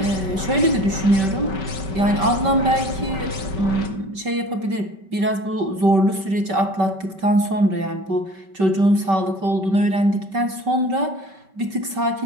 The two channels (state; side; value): late; left; 5.2 ms